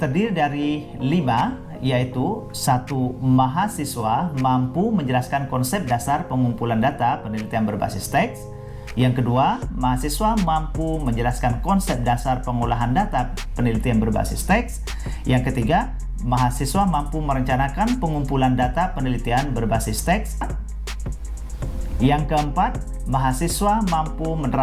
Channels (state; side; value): identical; both; correlation 1.00